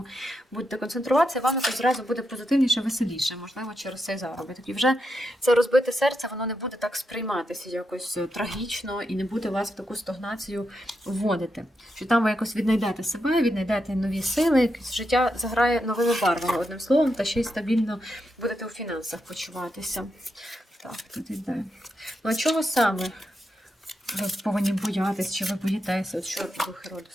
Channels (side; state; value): both; normal; correlation 0.84